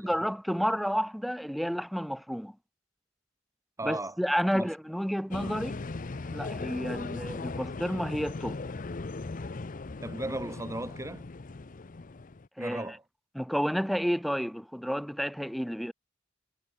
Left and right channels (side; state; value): both; normal; correlation 0.93